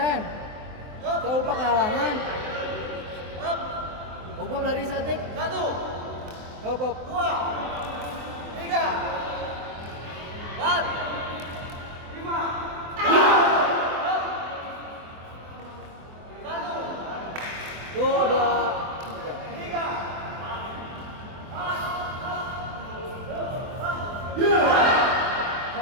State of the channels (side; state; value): left; late; 24 ms